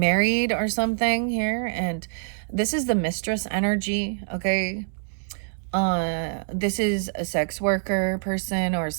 or something here, and This is the mistress energy, okay? This is a sex worker person or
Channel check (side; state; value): left; silent; digital silence